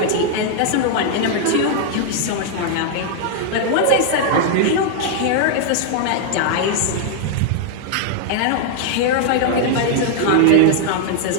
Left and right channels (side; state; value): both; different; correlation 0.00